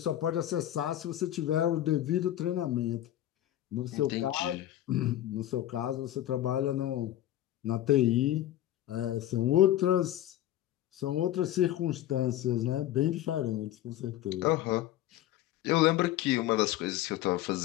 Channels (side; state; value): right; quieter; 13.1 dB